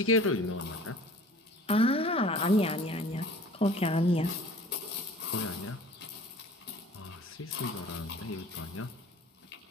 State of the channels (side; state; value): both; normal; correlation 0.46